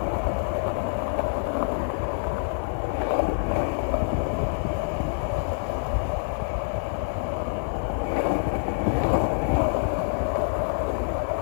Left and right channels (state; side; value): silent; right; digital silence